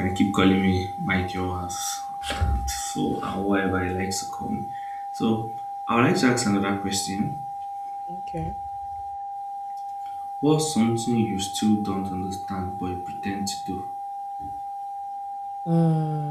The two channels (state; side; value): identical; both; correlation 1.00